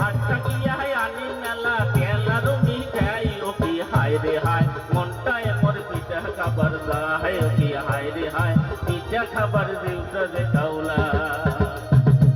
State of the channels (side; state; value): both; identical; correlation 1.00